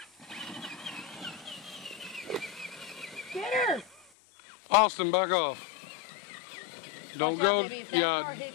Get her! Austin, back off. Don't Watch go. out, baby. If that car Yeah, hits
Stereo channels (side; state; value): right; drops out; at 4.0 s